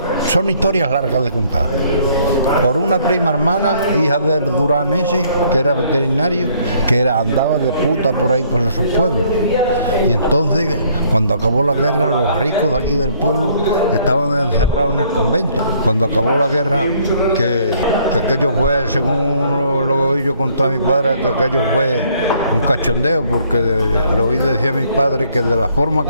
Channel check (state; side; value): inverted; both; correlation -0.64